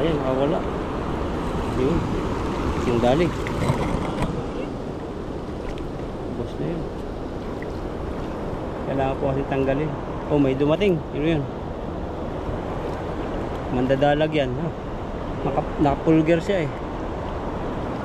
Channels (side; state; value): both; identical; correlation 1.00